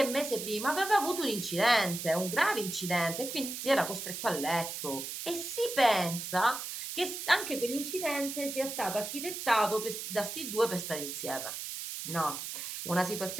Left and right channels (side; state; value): right; noise; hiss, 6 dB below the sound